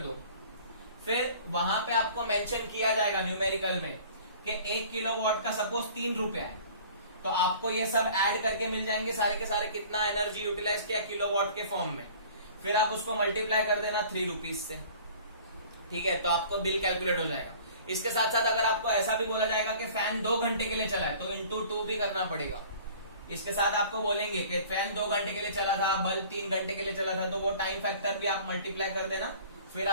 फिर वहां पे आपको मेंशन किया जाएगा न्यूमेरिकल में कि 1 किलोवाट का सपोज 3 रुपया है, तो आपको ये सब ऐड करके मिल जाएंगे सारे के सारे कितना एनर्जी यूटिलाइज किया किलोवाट के फॉर्म में। फिर आप उसको मल्टीप्लाई कर देना 3 रुपीज से, ठीक है, तो आपको बिल कैलकुलेट हो जाएगा। इसके साथ साथ अगर आपको ऐसा भी बोला जाएगा कि फैन 2 घंटे के लिए चला है, तो इंटू 2 भी करना पड़ेगा। इसके साथ आपको बोलेंगे कि फैन 2 घंटे के लिए चला था, बल्ब 3 घंटे के लिए चला था, तो वो टाइम फैक्टर भी आप मल्टीप्लाई कर देना। फिर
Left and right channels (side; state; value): both; inverted; correlation -0.47